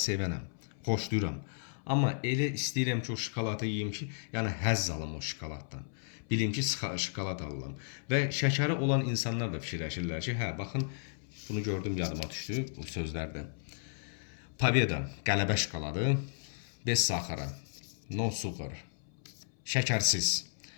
sevənəm, xoşlayıram. Amma elə istəyirəm ki, o şokoladı yeyim ki, yəni həzz alım o şokoladdan. Bilim ki, şokolad alıram. Və şəkəri olan insanlar da fikirləşirlər ki, baxın, bunu gördüm, yadıma düşdü bu sözlərdən. Победа, qələbə şokoladı, bez saxara, no sugar, şəkərsiz.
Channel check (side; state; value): right; silent; 55 dB below the other